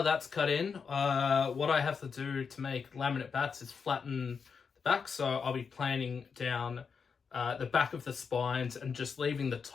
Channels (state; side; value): quieter; right; 5.8 dB